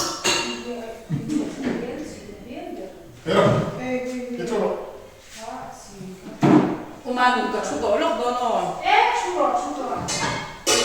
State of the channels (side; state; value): both; identical; correlation 1.00